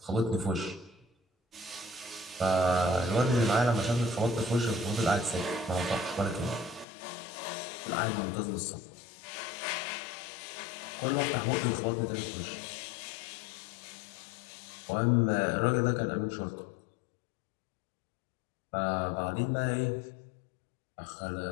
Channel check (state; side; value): drops out; right; at 6.9 s